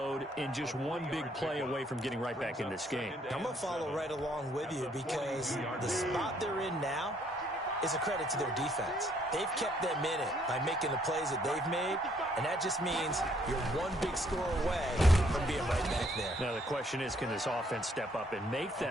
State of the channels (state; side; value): normal; both; correlation 0.66